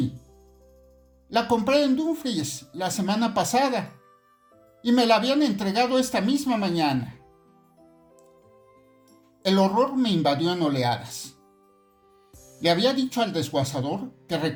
La compré en Dumfries la semana pasada y me la habían entregado esta misma mañana. El horror me invadió en oleadas. Le había dicho al desguazador que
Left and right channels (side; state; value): both; identical; correlation 1.00